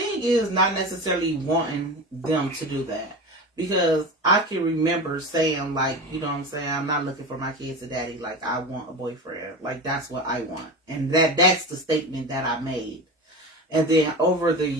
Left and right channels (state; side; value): normal; both; correlation 0.27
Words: is not necessarily wanting them to do that. Because I can remember saying, like, you know what I'm saying, I'm not looking for my kids a daddy, like, I want a boyfriend. Like, that's what I want. And that's the statement that I made. And then over the